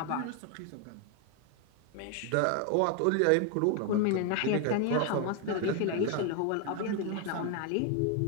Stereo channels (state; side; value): different; both; correlation 0.01